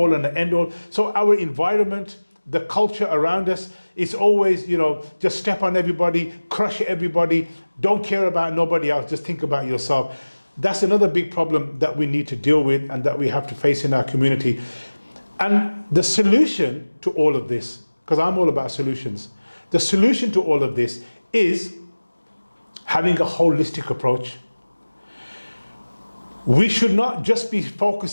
and an end-all. So our environment, the culture around us, is always, you know, just step on everybody, crush everybody, don't care about nobody else, just think about yourself. That's another big problem that we need to deal with and that we have to face in our community. And the solution to all of this, because I'm all about solutions, the solution to all of this is having a holistic approach. We should not just be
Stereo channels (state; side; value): inverted; both; correlation -1.00